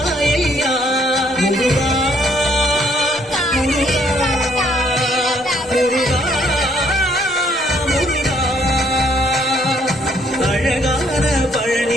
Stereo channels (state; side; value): normal; both; correlation 0.68